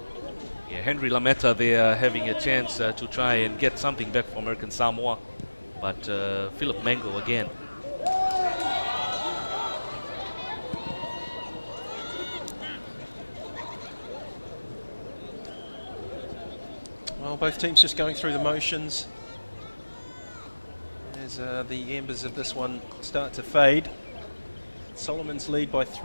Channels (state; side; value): inverted; both; correlation -1.00